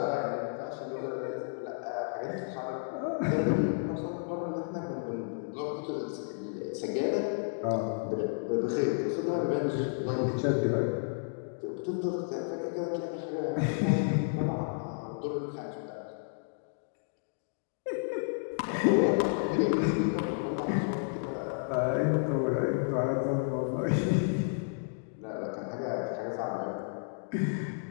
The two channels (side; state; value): right; silent; digital silence